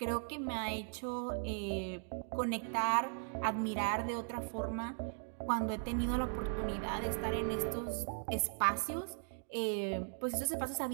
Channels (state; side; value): silent; left; 52 dB below the other